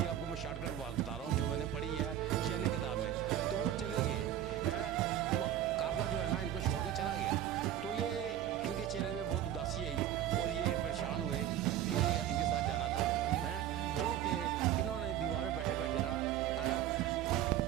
आपको मैं शॉर्टकट बात बता रहा हूँ जो मैंने पढ़ी है चैनी किताब में। तो वो चले गए हैं, काफ़िला जो है ना इनको छोड़ के चला गया। तो ये इनके चेहरे में बहुत उदासी आई और ये परेशान हुए कि इनके साथ जाना था, हैं। जो कि इन्होंने दीवार पे बैठे बैठे ना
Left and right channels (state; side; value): quieter; left; 11.3 dB